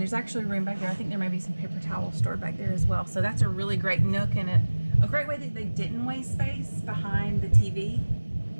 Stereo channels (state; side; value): inverted; both; correlation -1.00